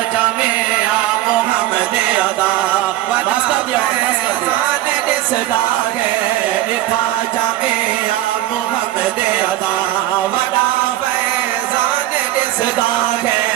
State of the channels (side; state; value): left; quieter; 14.8 dB